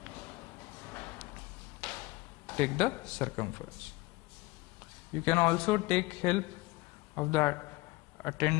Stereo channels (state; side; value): quieter; right; 20.3 dB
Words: Take the circumference. You can also take help of the